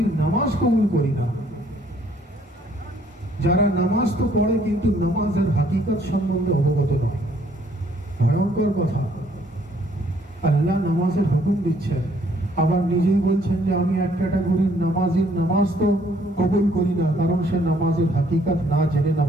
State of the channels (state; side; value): normal; both; correlation 0.64